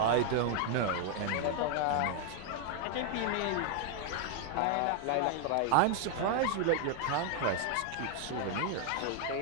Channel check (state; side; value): different; both; correlation 0.00